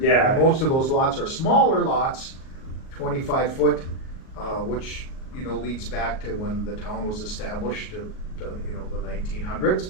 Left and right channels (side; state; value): right; late; 38 ms